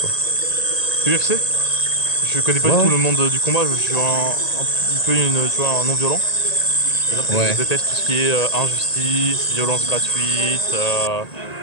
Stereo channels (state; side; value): late; right; 1.9 ms